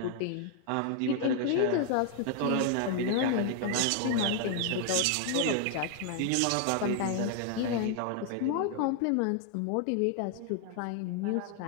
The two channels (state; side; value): different; both; correlation 0.00